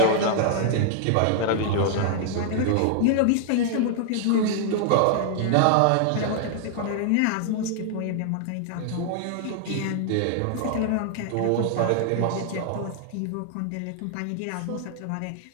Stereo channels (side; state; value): both; different; correlation 0.00